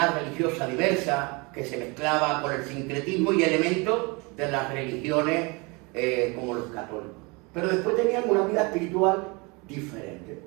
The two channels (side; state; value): left; quieter; 28.0 dB